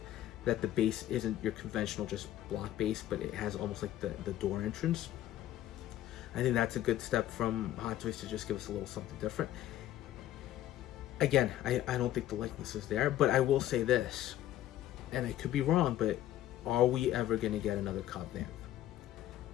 that the base isn't your conventional just block base, but it has almost like the door entrance. I think that's a good step from Hot Toys to just give us a little something different. Again, I don't think the likeness is there, but I will say this, and I could be wrong, but are we ever going to get another Cobb Vanth?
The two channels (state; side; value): quieter; right; 13.0 dB